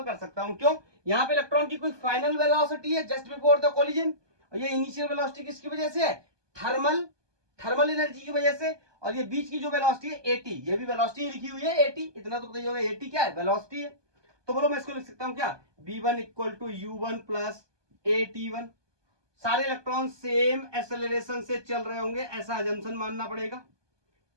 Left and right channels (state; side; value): late; left; 1.2 ms